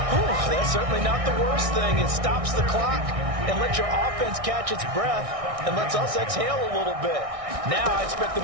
That's certainly not the worst thing. It stops the clock and lets your offense catch its breath and lets us exhale a little bit. Now I expect them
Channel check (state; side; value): late; left; 1.6 ms